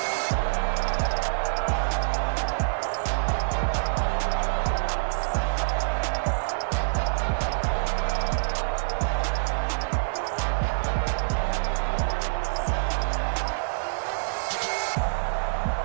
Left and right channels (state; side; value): silent; left; digital silence